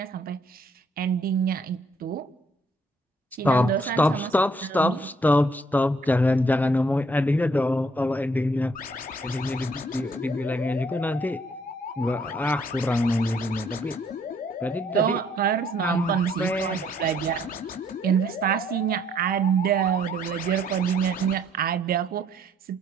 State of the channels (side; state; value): both; normal; correlation 0.65